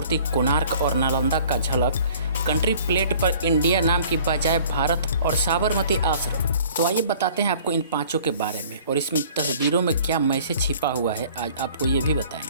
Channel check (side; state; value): both; inverted; correlation -0.51